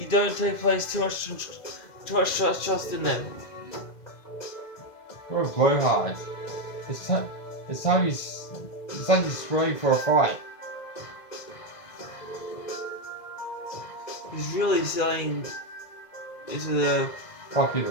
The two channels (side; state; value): right; late; 2.0 ms